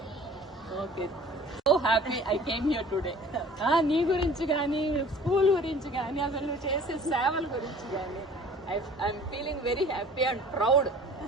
Okay, so happy I came here today. నీ గురించి కానీ స్కూల్ గురించి కానీ అసలు నువ్వు చేసే సేవల గురించి కానీ I'm feeling very happy and proud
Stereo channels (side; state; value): both; normal; correlation 0.48